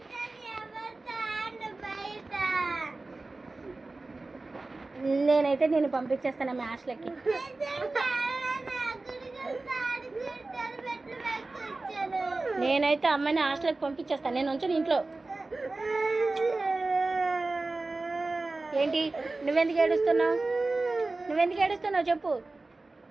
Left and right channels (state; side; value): quieter; left; 3.3 dB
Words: నేనైతే నేను పంపించేస్తాను మీ హాస్టల్కి. నేనైతే అమ్మాయిని హాస్టల్కి పంపించేస్తాను. నేను ఉంచను ఇంట్లో. ఏంటి నువ్వెందుకు ఏడుస్తున్నావు? నువ్వెందుకు ఏడుస్తున్నావు చెప్పు.